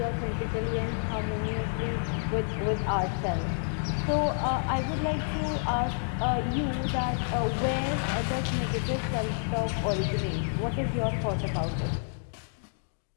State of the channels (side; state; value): right; silent; digital silence